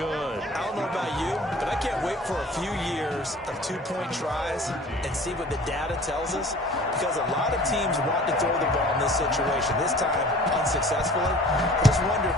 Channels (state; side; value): normal; both; correlation 0.46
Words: I don't know about you, but I can't wait for a few years of 2-point tries and see what the data tells us, because a lot of teams want to throw the ball in this situation, this time unsuccessfully. I just wonder if